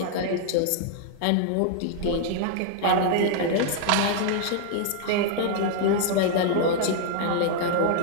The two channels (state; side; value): different; both; correlation -0.01